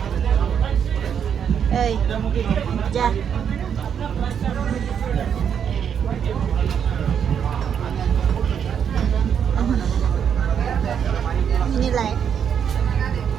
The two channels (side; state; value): left; quieter; 8.0 dB